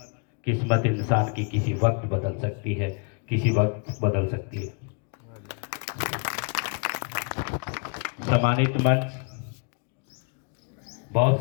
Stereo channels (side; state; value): right; quieter; 36.3 dB